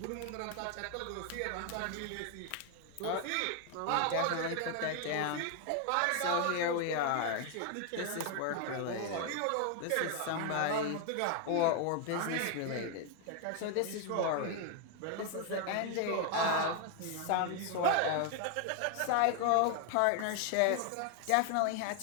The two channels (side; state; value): both; different; correlation 0.01